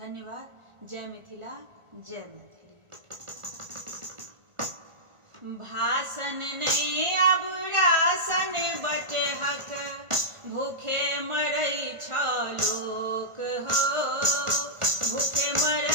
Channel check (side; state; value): left; late; 1.4 ms